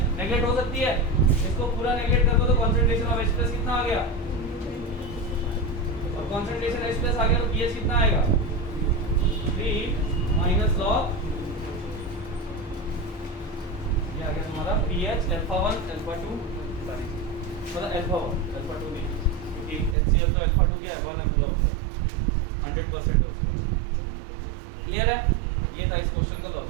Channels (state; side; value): drops out; left; at 20.0 s